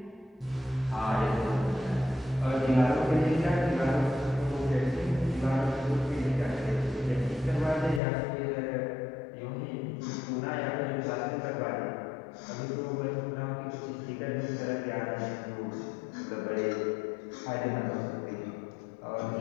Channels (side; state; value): right; drops out; at 8.0 s